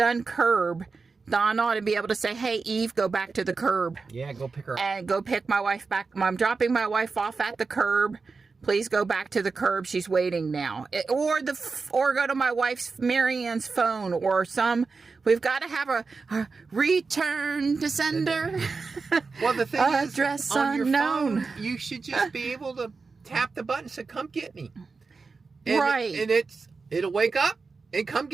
curb, Dawn ought to be able to say, "Hey, Eve, go back to the curb." Yeah, go pick her up. And go pick my wife back. I'm dropping my wife off at the curb. Please go back to the curb. She's waiting now. Or go to my wife's, Marianne's phone, or we've got to have a return to sender. Well, the thing is, address on unknown. Your phone, you should just be able to tap the button and say, "Come get me." Right. And it'll wake up and come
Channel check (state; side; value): quieter; left; 4.5 dB